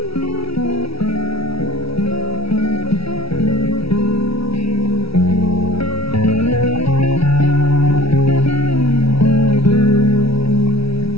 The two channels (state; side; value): late; right; 0.76 ms